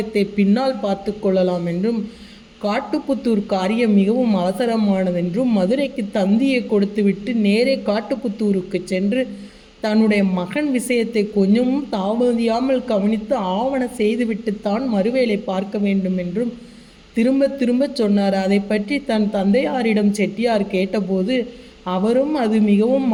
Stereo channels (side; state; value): both; identical; correlation 1.00